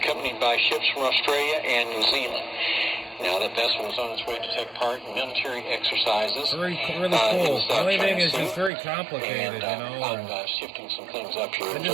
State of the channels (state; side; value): drops out; left; at 8.7 s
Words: by ships from Australia and New Zealand. Now, that vessel was on its way to take part in military exercises. Really cool. The only thing is it's very complicated, I'm shifting some things up here. I